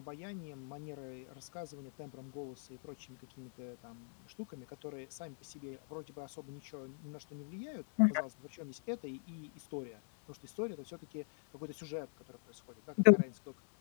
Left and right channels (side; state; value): right; silent; digital silence